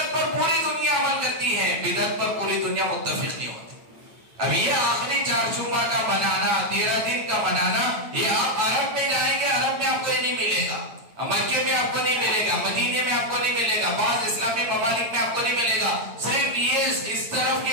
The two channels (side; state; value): left; late; 8.5 ms